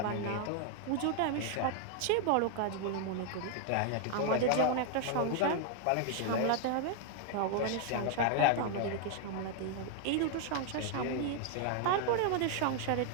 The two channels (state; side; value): different; both; correlation 0.00